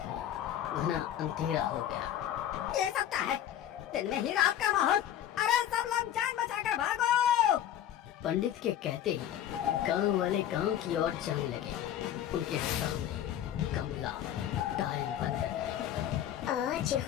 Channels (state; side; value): quieter; right; 11.0 dB